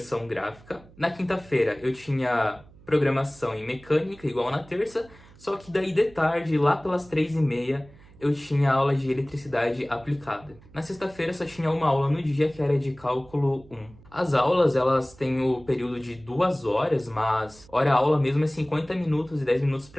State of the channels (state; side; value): noise; right; hum, 24 dB below the sound